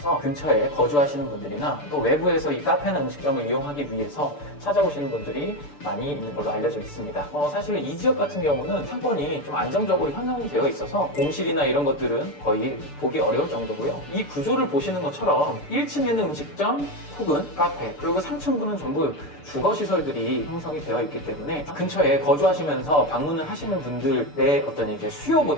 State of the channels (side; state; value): right; late; 6.8 ms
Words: 근처에 거주하시는 분들이나 또 외부에서 이 카페나 음식점을 이용하기 위해서 찾아오시는 분들이 많이 있는 걸로 알려져 있습니다. 사실 이 지역 같은 경우는 상권이 좀 안정적으로 형성이 되어 있어서 공실이나 이런 것들은 거의 보기 어려울 정도고요. 이 구조를 보시는 것처럼 1층에는 음식점 혹은 카페, 그리고 상층부는 전부 주거시설들이 형성이 되어 있기 때문에 근처에 거주하시면서 방문을 하시는 분들의 어떤 이제